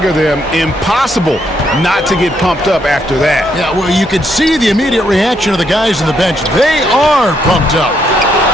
them. Impossible not to get pumped up after that. Yeah, well, you can see the immediate reaction of the guys on the bench. They are pumped up.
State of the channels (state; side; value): normal; both; correlation 0.75